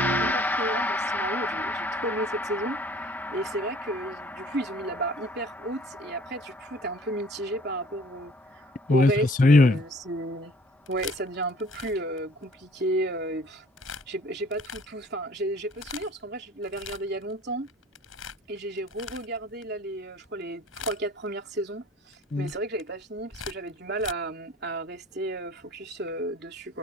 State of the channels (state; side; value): normal; both; correlation 0.53